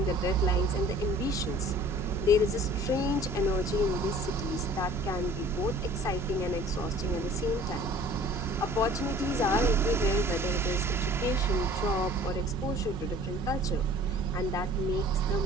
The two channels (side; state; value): left; noise; rumble, 13 dB below the sound